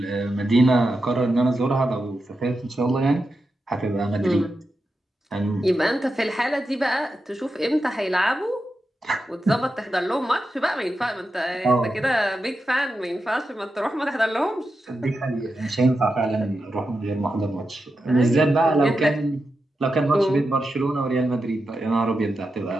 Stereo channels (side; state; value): both; normal; correlation 0.89